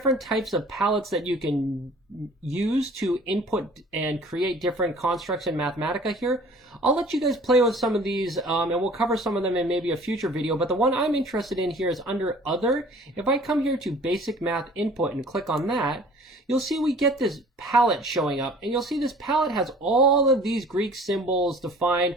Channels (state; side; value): normal; both; correlation 0.49